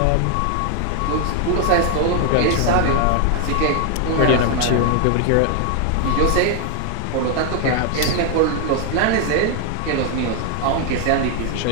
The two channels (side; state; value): both; different; correlation 0.00